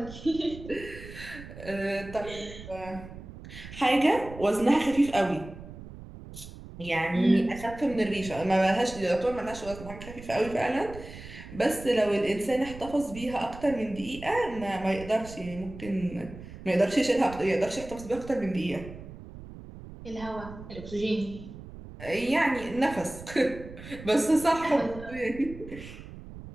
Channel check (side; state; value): right; noise; rumble, 14 dB below the sound